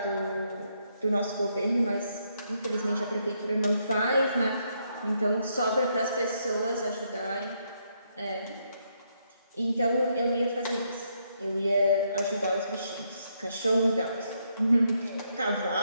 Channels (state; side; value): inverted; both; correlation -0.76